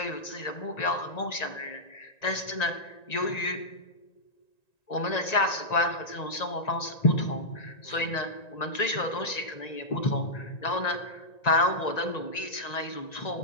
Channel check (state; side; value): late; right; 1.9 ms